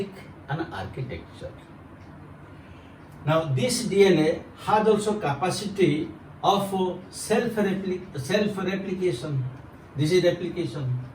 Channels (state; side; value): identical; both; correlation 1.00